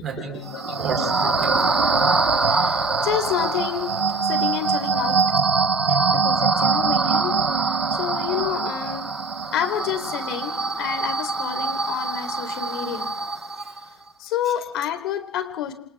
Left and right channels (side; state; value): both; normal; correlation 0.44